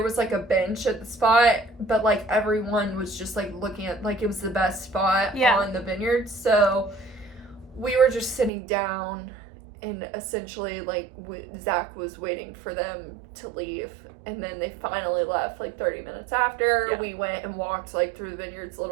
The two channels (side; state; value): left; drops out; at 8.5 s